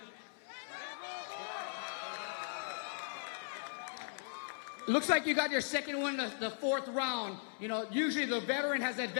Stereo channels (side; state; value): right; silent; 52 dB below the other